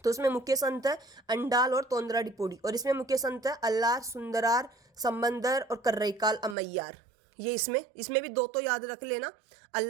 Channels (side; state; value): left; drops out; at 6.6 s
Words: तो इसमें मुख्य संत है अंडाल और तोंदरा डिपोडी, और इसमें मुख्य संत है अल्लार, सुंदरार, संबंदर और कर्रईकाल अमैयार। ये इसमें भी 2 तो याद रख लेना,